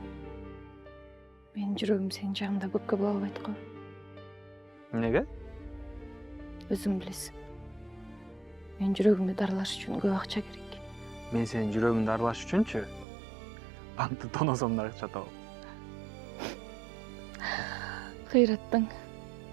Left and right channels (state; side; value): drops out; left; at 13.1 s